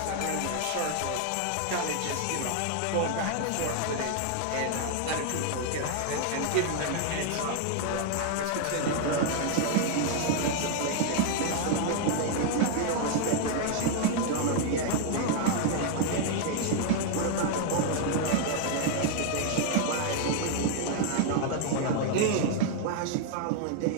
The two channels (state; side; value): different; both; correlation 0.00